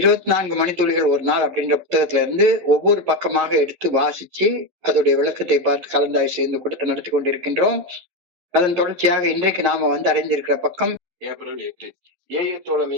மணித்துளிகள் ஒரு நாள் அப்படின்ற புத்தகத்துல இருந்து ஒவ்வொரு பக்கமாக எடுத்து வாசிச்சு அதோடைய விளக்கத்தை பார்த்து கலந்தாய்வு செய்து கூட்டத்தை நடத்தி கொண்டிருக்கின்றோம். அதன் தொடர்ச்சியாக இன்றைக்கு நாம அடைந்திருக்கிற பக்கம் ஏப்ரல் 8. ஏஏ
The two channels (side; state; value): left; late; 11 ms